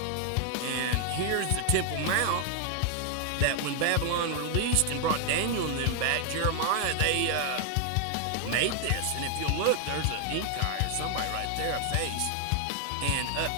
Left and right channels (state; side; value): different; both; correlation 0.00